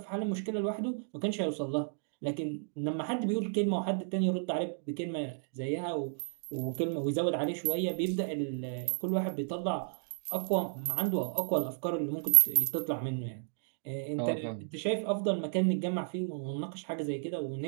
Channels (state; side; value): silent; left; digital silence